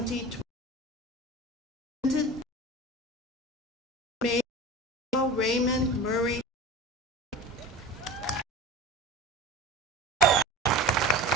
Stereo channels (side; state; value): both; normal; correlation 0.33